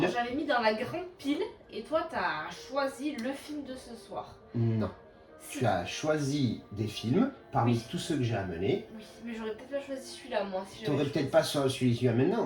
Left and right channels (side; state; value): both; identical; correlation 1.00